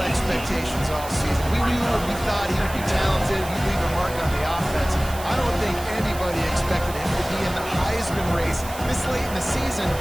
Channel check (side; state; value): right; noise; hiss, 14 dB below the sound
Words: expectations all season. We knew and we thought he would be talented. He'd leave a mark on the offense. I don't think anybody expected him to be in the Heisman race this late in the season.